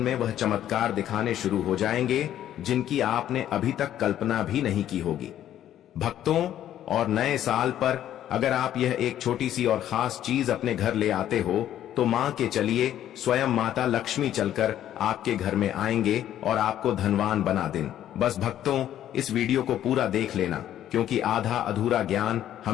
वह चमत्कार दिखाने शुरू हो जाएंगे जिनकी आपने अभी तक कल्पना भी नहीं की होगी। भक्तों, और नए साल पर अगर आप यह एक छोटी सी और खास चीज अपने घर ले आते हो तो मान के चलिए स्वयं माता लक्ष्मी चलकर आपके घर में आएंगे और आपको धनवान बना दें। बस भक्तों, इस वीडियो को पूरा देख लेना क्योंकि आधा अधूरा ज्ञान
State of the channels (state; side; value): quieter; right; 11.5 dB